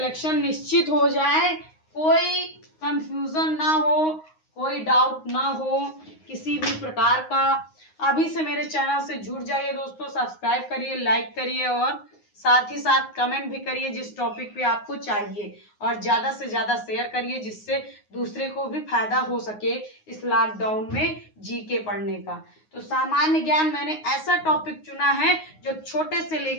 निश्चित हो जाए, कोई कंफ्यूजन ना हो, कोई डाउट ना हो किसी भी प्रकार का। अभी से मेरे चैनल से जुड़ जाइए दोस्तों, सब्सक्राइब करिए, लाइक करिए और साथ ही साथ कमेंट भी करिए जिस टॉपिक पे आपको चाहिए, और ज्यादा से ज्यादा शेयर करिए जिससे दूसरे को भी फायदा हो सके इस लॉकडाउन में जीके पढ़ने का। तो सामान्य ज्ञान मैंने ऐसा टॉपिक चुना है जो छोटे से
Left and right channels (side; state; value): right; late; 9.5 ms